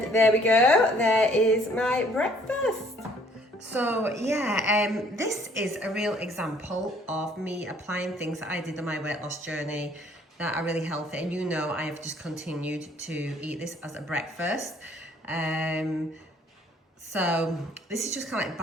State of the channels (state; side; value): normal; both; correlation 0.60